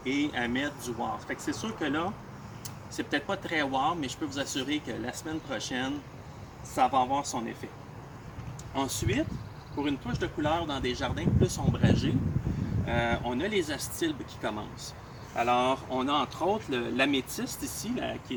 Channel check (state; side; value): identical; both; correlation 1.00